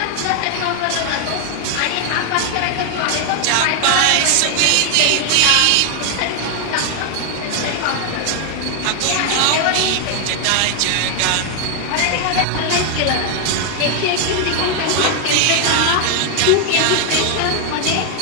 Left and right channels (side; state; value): both; different; correlation 0.00